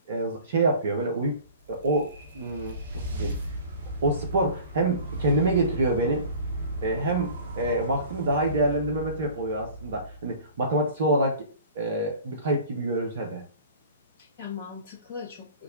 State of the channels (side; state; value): both; inverted; correlation -0.43